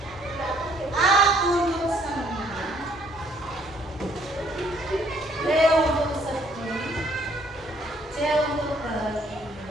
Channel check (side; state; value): both; normal; correlation 0.64